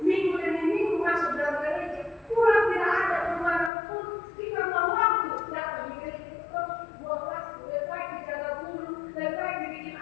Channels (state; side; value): drops out; right; at 3.7 s